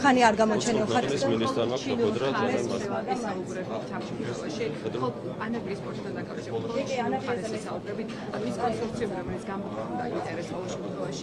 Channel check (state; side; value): identical; both; correlation 1.00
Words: ხანი არ გამოჩენილ ხართ. ეს მინისტრმა მაქვს ყოფოდრა ძალიან მარტივად. ესაუბრებით ჩამშფოთებაში, ხო ანაკლის სპორტთან დაკავშირებით, ხო ანაკლის ესაუბრებით, ანუ ის კონსორციუმი, რომელიც გამოხდა ინტერესს ყოველ